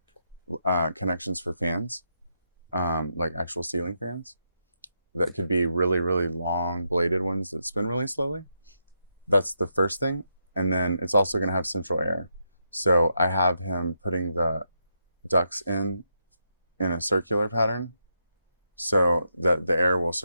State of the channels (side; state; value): both; inverted; correlation -0.81